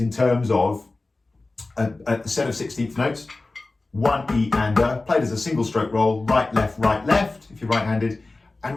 terms of a set of 16th notes. 1 E and played as a single stroke roll, right, left, if you're right-handed.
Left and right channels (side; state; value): right; quieter; 3.2 dB